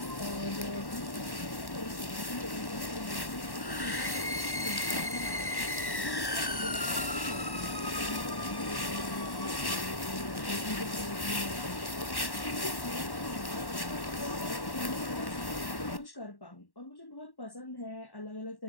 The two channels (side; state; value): right; late; 1.1 ms